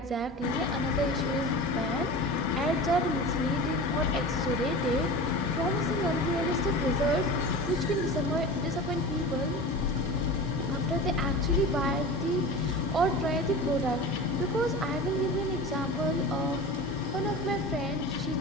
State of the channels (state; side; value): normal; both; correlation 0.32